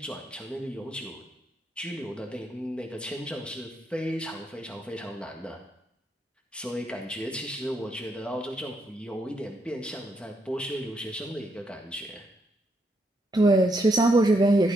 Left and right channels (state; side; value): normal; both; correlation 0.77